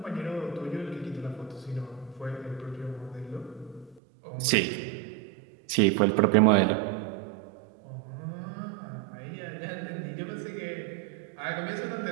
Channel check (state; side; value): drops out; left; at 4.0 s